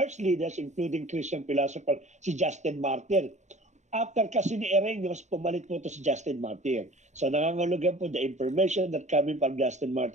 leaders, including Christian philosopher, si Justin Martyr. After kasi ni Irenaeus, pumalit po ito si Justin Martyr. So nangangulugan po the information that coming from Justin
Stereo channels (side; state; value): left; late; 0.34 ms